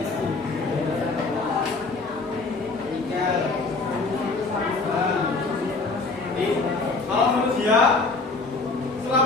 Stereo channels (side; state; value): right; quieter; 3.8 dB